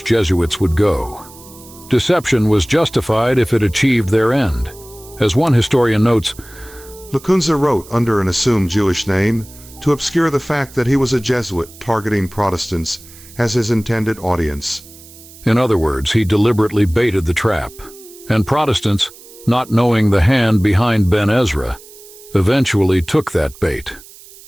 Jesuits would go. Deception was justified if it achieved their end. As one historian notes, Lacunza wrote under an assumed Jewish name to obscure the fact that he was a Jesuit targeting Protestants as his intended audience. In other words, he deliberately baited the trap, and Protestants, not knowing the hand behind Ben Ezra, eventually took that bait.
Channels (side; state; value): right; noise; hiss, 21 dB below the sound